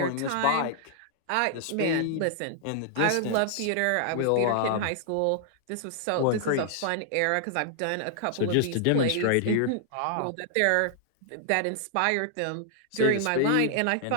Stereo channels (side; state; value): both; different; correlation -0.01